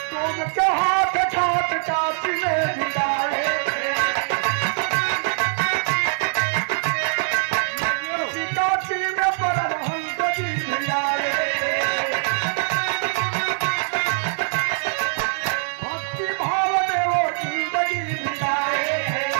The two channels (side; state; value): left; silent; 64 dB below the other